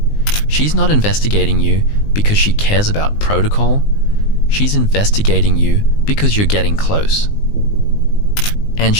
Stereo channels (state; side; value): late; right; 19 ms